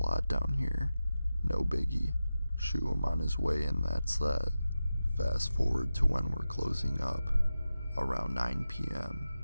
down here. No biggie. Shoo him on his way and that's that. Fast forward to when we're closing up. Around 9 p.m.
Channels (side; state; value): both; inverted; correlation -0.93